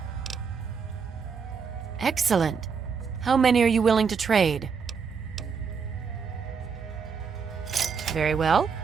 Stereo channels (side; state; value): left; quieter; 5.9 dB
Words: Excellent. How many are you willing to trade? Very well.